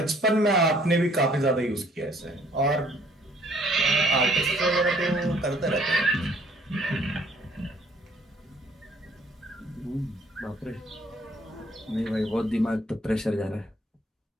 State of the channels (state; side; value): normal; both; correlation 0.60